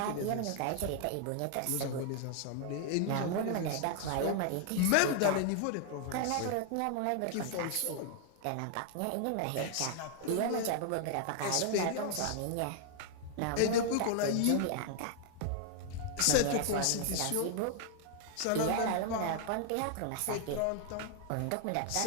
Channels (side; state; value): both; different; correlation 0.00